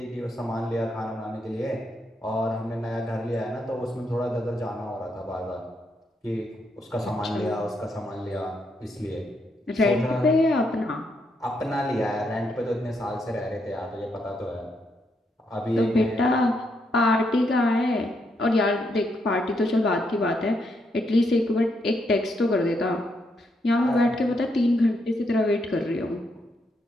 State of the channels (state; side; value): normal; both; correlation 0.78